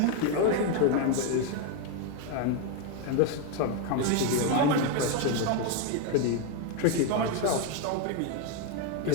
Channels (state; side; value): different; both; correlation 0.02